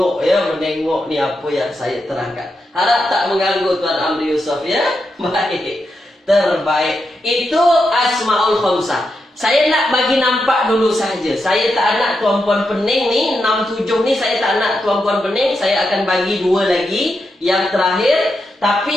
ya, menengok ni apa yang saya terangkan. Harap tak mengganggu Tuan Amri Yusof ya. Baik. Terbaik. Itu Asmaul Khamsah. Saya nak bagi nampak dulu saja. Saya tak nak tuan-puan pening ni 6, 7 ni saya tak nak tuan-puan pening. Saya akan bagi 2 lagi yang terakhir. Tapi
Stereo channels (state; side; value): normal; both; correlation 0.85